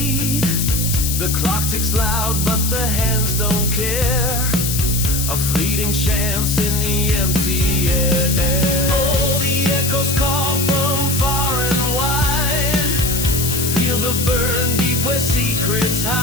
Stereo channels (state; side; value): noise; left; hiss, 2 dB below the sound